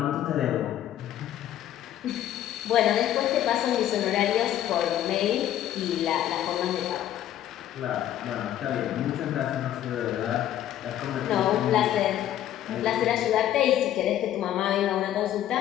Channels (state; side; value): quieter; right; 11.9 dB